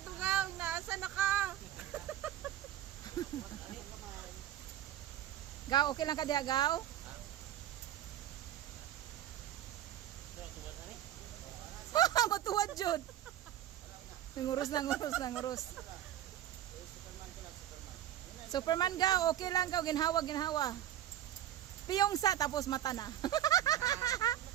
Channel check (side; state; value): left; quieter; 12.0 dB